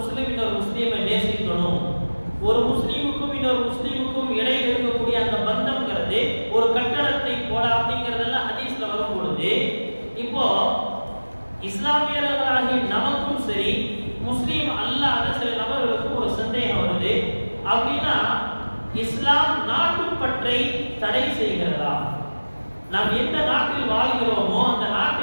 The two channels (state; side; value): inverted; both; correlation -1.00